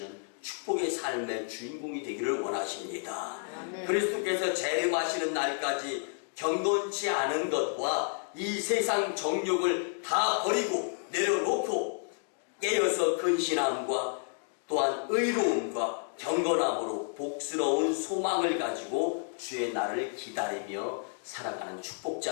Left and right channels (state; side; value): silent; right; 57 dB below the other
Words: 축복의 삶의 주인공이 되기를 원하십니다. 그리스도께서 재림하시는 날까지 경건치 않은 것과 이 세상 정욕을 다 버리고 내려놓고 깨어서 근신함과 또한 의로움과 경건함으로 복스러운 소망을 가지고 주의 날을 기다리며 살아가는